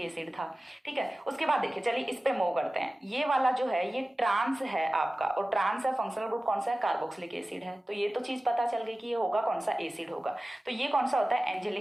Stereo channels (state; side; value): normal; both; correlation 0.96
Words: था, ठीक है। उसके बाद देखिए चलिए इस पे मूव करते हैं। ये वाला जो है ये ट्रांस है आपका, और ट्रांस है, फंक्शनल ग्रुप कौन सा है, कार्बोक्सिलिक एसिड है। तो ये तो चीज पता चल गई कि ये होगा कौन सा, एसिड होगा। तो ये कौन सा होता है,